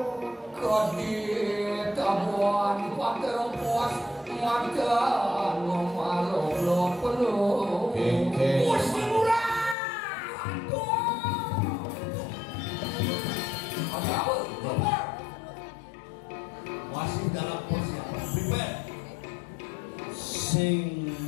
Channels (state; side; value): drops out; right; at 9.8 s